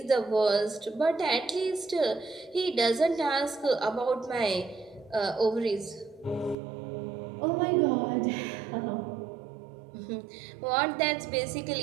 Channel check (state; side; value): drops out; left; at 6.6 s